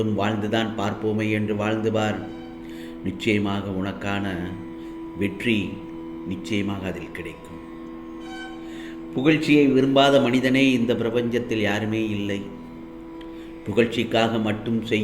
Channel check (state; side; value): identical; both; correlation 1.00